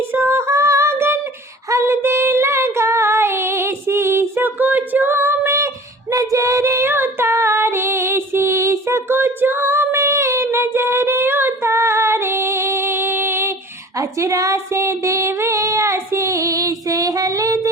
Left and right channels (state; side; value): normal; both; correlation 0.43